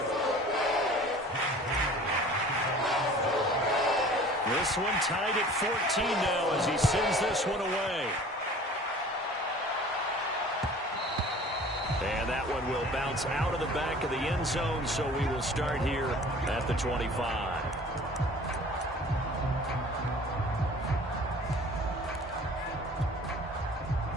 This one tied at 14 now as he sends this one away. And that one will bounce out of the back of the end zone, so we will start here at the 25.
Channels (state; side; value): normal; both; correlation 0.46